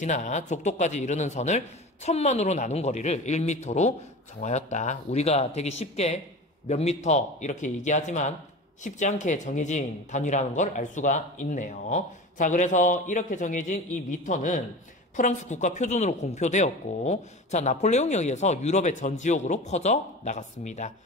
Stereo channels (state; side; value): normal; both; correlation 0.32